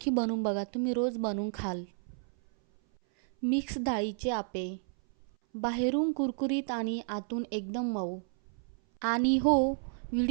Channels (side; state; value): left; silent; 57 dB below the other